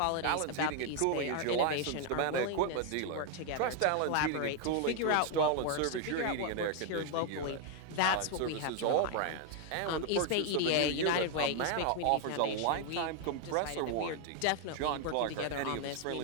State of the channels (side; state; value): both; different; correlation 0.00